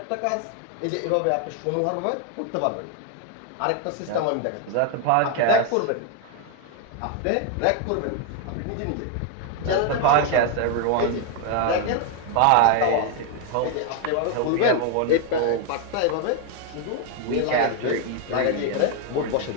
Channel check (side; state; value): both; different; correlation 0.00